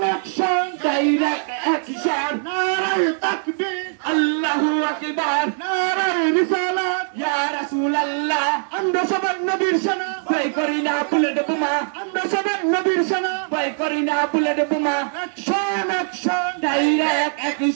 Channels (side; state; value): left; silent; 64 dB below the other